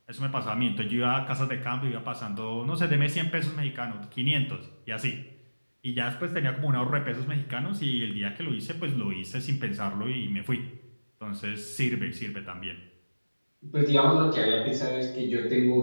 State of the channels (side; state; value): both; inverted; correlation -1.00